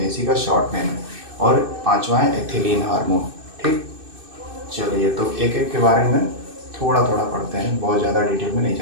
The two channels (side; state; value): left; late; 2.6 ms